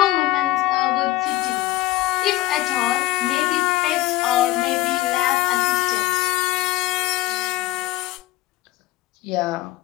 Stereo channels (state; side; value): quieter; right; 16.9 dB